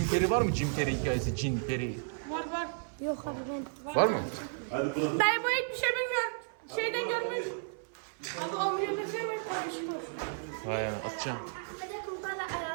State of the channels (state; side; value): silent; left; 55 dB below the other